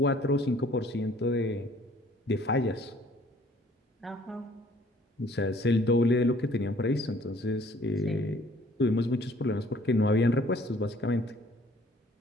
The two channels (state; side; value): normal; both; correlation 0.57